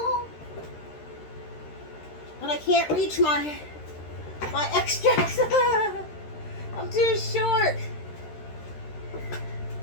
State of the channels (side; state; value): right; late; 13 ms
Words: But I can't reach my extracts. I'm too short.